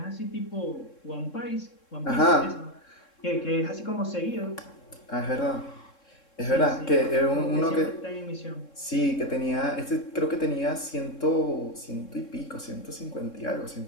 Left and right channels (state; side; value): late; right; 3.7 ms